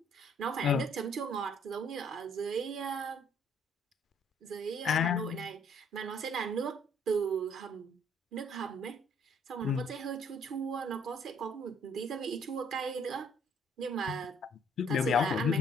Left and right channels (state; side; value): normal; both; correlation 0.62